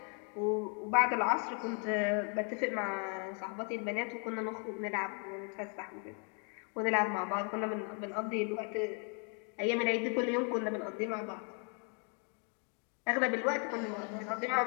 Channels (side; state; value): right; quieter; 39.5 dB